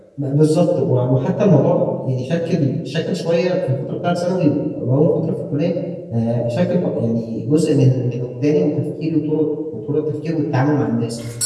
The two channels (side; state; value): both; identical; correlation 1.00